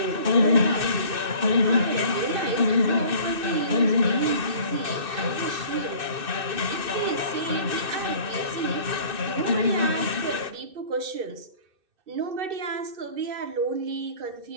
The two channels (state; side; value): late; left; 2.6 ms